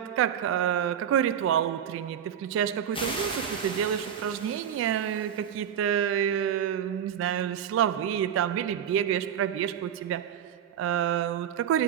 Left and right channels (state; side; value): quieter; left; 9.1 dB